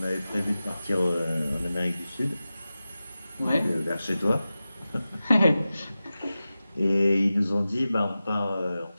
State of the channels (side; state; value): both; inverted; correlation -0.94